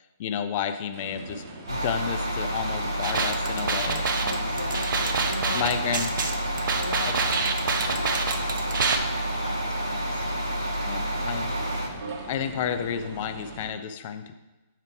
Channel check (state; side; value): inverted; both; correlation -0.53